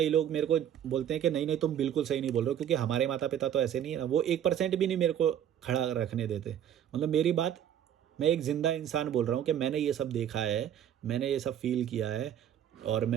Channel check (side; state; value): left; quieter; 9.9 dB